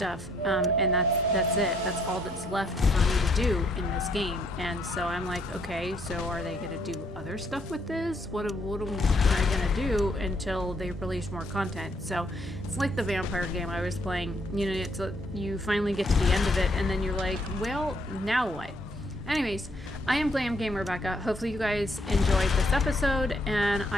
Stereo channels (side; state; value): both; normal; correlation 0.69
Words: and that's it. That's all that's left for me to do in this game. And so I'm like, okay, so are they gonna do other stuff with this? What am I gonna do until they release more content? So it's like the vampire game I was playing. You know, it's you finally get to the end of it, and then you're like, well, now what? Anyways, I am Glam Game Rebecca. Hopefully you guys enjoyed this episode, and